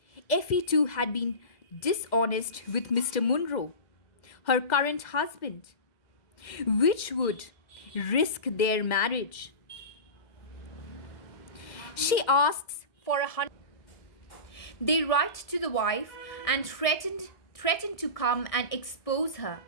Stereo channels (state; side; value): late; right; 2.1 ms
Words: Effie too had been dishonest with Mr. Munro, her current husband, which would risk their marriage. She asks for 100. They write to the wife and threaten to come and expose her.